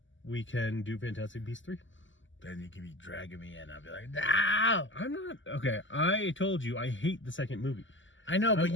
we can do Fantastic Beasts 3. Then you can be dragging me in. I'll be like, no! I'm not. Okay, I told you I hate the second movie. I know, but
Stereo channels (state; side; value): late; right; 0.55 ms